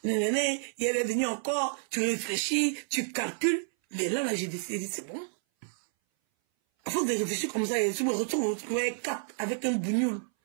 Nénéné, il est venu encore. Tu réfléchis, tu calcules. Mais là, j'ai décidé, c'est bon. À force de réfléchir comme ça, je me retrouve avec un bougnoule.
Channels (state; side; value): silent; left; 58 dB below the other